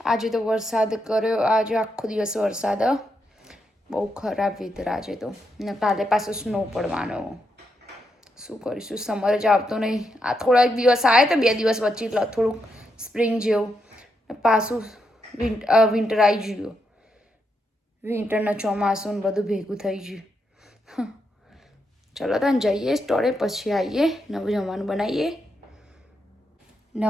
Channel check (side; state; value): both; normal; correlation 0.82